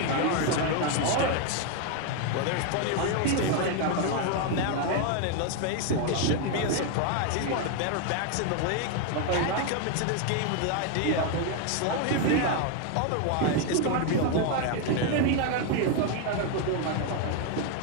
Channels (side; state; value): both; different; correlation 0.01